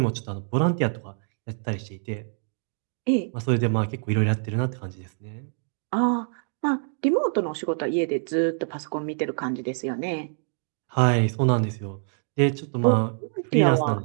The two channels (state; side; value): silent; left; digital silence